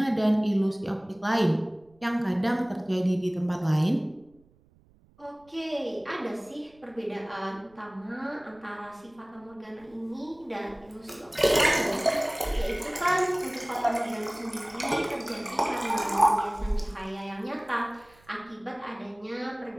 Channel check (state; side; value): noise; right; rumble, 30 dB below the sound